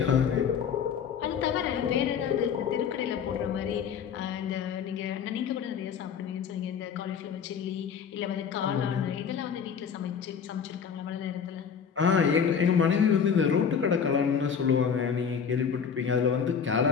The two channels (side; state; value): right; quieter; 7.0 dB